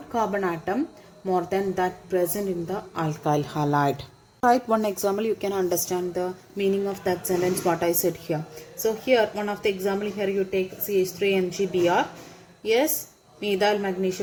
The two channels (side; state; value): both; identical; correlation 1.00